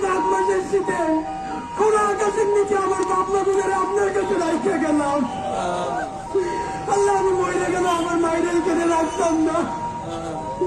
মাঘ মাসের শীতে খোলা আকাশের নিচে আমার বাপমা গুলোর আপনার কাছে রাখতে গেলাম। আল্লাহ আমি মরে গেল আমার মায়ের এখানে রাখতাম না,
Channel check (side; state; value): both; identical; correlation 1.00